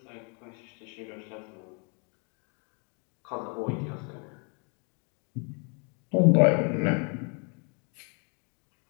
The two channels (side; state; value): right; quieter; 36.8 dB